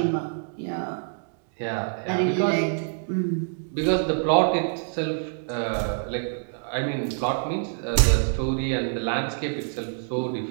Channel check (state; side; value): silent; left; digital silence